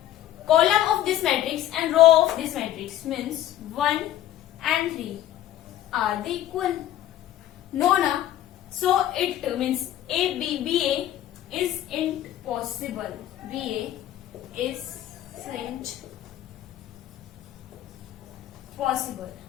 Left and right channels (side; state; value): right; quieter; 12.7 dB